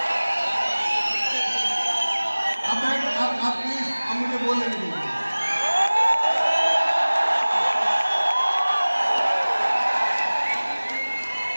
आप प्लीज अब मुझे बोलने दीजिए।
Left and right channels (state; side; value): inverted; both; correlation -1.00